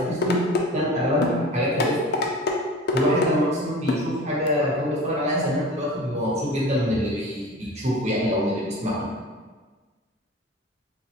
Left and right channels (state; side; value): normal; both; correlation 0.37